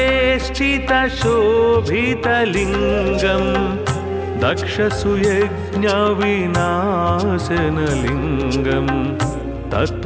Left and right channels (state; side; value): identical; both; correlation 1.00